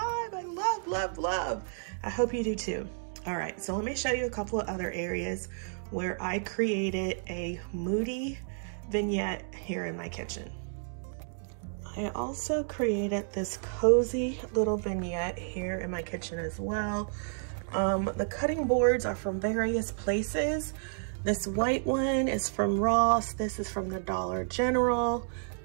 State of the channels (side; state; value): left; silent; digital silence